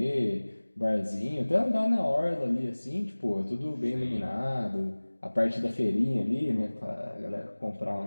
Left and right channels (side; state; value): both; inverted; correlation -1.00